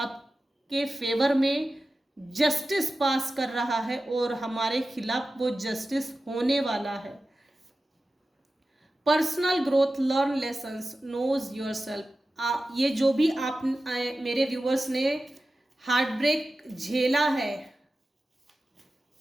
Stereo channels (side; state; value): both; normal; correlation 0.94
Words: फेवर में जस्टिस पास कर रहा है और हमारे खिलाफ वो जस्टिस होने वाला है। Personal growth, learn lessons, knows yourself. ये जो भी आप मेरे व्यूअर्स ने हार्ट ब्रेक झेला है,